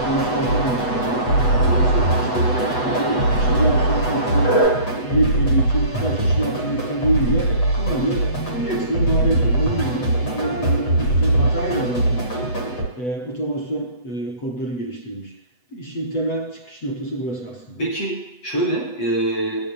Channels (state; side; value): late; right; 8.1 ms